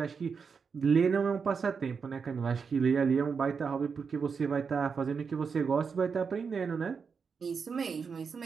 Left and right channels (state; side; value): quieter; left; 5.7 dB